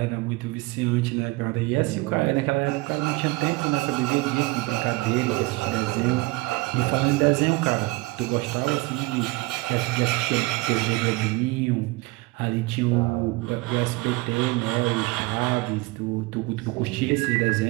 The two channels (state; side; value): quieter; left; 23.1 dB